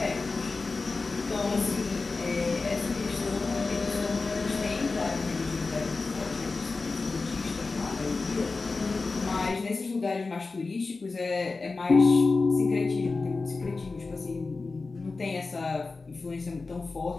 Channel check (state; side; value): quieter; right; 3.9 dB